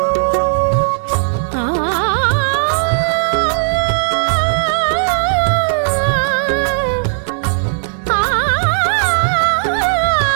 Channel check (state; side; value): silent; left; digital silence